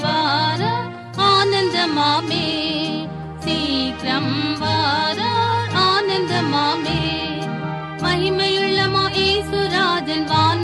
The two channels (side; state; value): both; identical; correlation 1.00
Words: வார ஆனந்தமாமே, சீக்கிரம் வார ஆனந்தமாமே. மகிமையுள்ள மாயேசுராஜன்